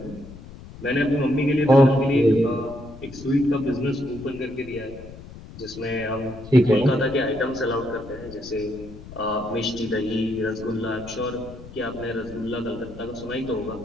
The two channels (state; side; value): noise; left; rumble, 16 dB below the sound